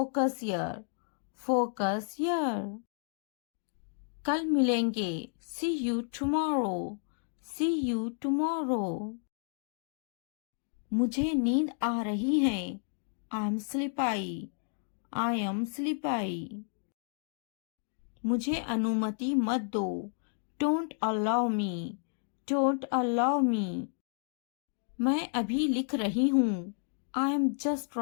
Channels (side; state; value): right; silent; 57 dB below the other